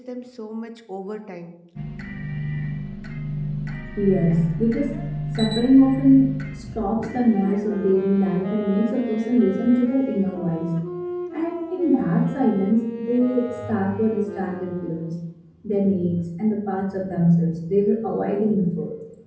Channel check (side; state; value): both; identical; correlation 1.00